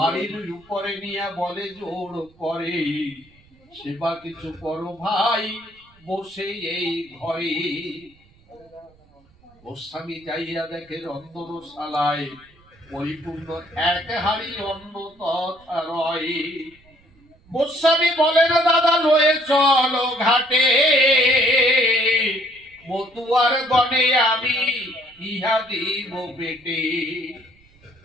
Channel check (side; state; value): right; noise; rumble, 30 dB below the sound